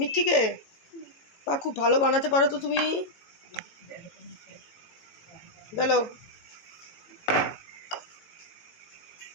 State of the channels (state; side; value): late; right; 18 ms